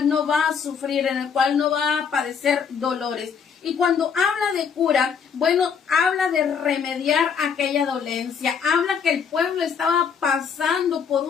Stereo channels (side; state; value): right; quieter; 6.7 dB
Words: no va a sufrir, en el cual no va a padecer dolores. Y cuando habla de cura, bueno, habla de remediar aquella dolencia, habla que el pueblo estaba pasando por